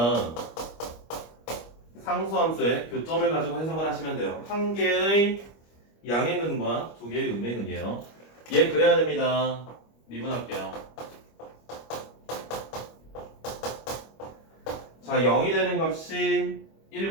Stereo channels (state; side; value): late; right; 25 ms